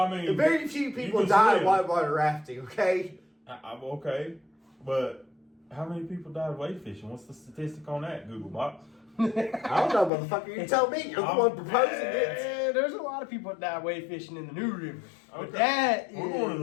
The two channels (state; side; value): drops out; right; at 10.1 s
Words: mean, very few you people can die swim. whitewater rafting, okay? I'm okay, but how many people died wade fishing? What's the statistic on that, Google Box? I don't know, motherfucker. You tell me. You're the one proposing it. There's a lot of people that die wade fishing in the New River. But Okay. that We're is... going to